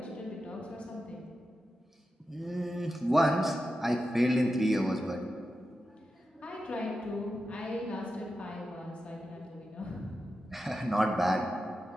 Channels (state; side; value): normal; both; correlation 0.90